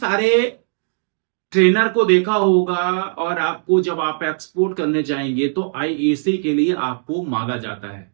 ट्रेनर को देखा होगा और आपको जब आप एक्सपोर्ट करने जाएंगे तो आईएसी के लिए आपको मांगा जाता है।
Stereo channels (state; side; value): silent; left; digital silence